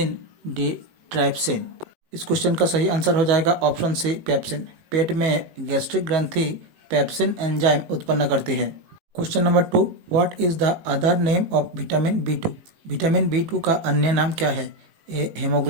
D trypsin. इस क्वेश्चन का सही आंसर हो जाएगा ऑप्शन सी पैप्सिन। पेट में गैस्ट्रिक ग्रंथि पैप्सिन एंजाइम उत्पन्न करती है। Question number 2। What is the other name of vitamin B 2। Vitamin B 2 का अन्य नाम क्या है? A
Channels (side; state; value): left; late; 18 ms